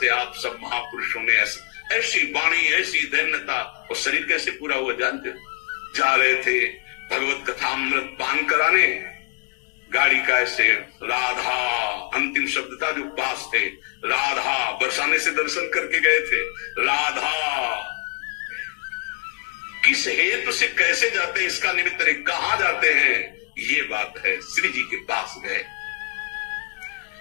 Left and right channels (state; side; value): quieter; right; 31.4 dB